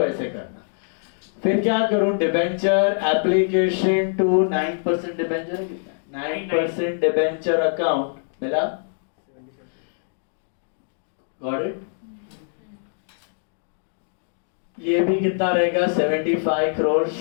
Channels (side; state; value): right; silent; digital silence